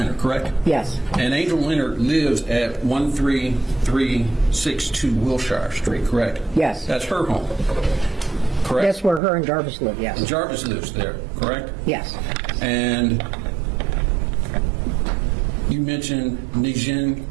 correct? Yes. And Angel Leonard lives at 13362 Wilshire Street, correct? Yes. That's her home, correct? That's where her and Jarvis live, yes. Jarvis lives there, correct? Yes. And you mentioned Najin,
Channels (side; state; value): left; drops out; at 9.2 s